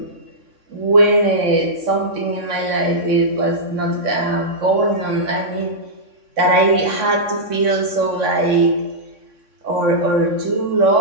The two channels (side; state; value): left; late; 3.6 ms